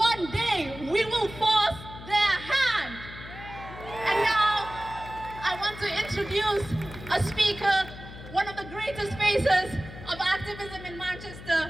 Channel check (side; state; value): left; noise; hum, 14 dB below the sound